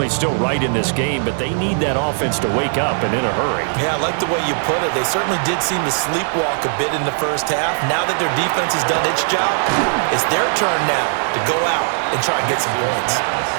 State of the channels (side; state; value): left; silent; digital silence